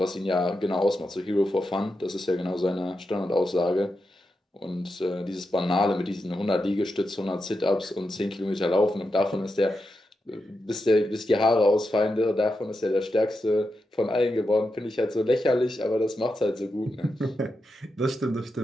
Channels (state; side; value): normal; both; correlation 0.87